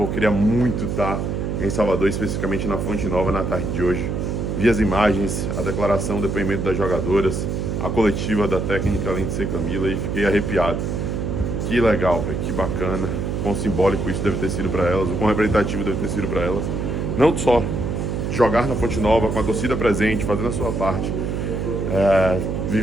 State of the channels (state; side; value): noise; right; hum, 2 dB below the sound